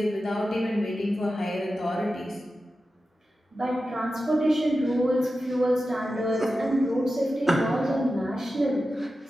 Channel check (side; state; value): both; normal; correlation 0.92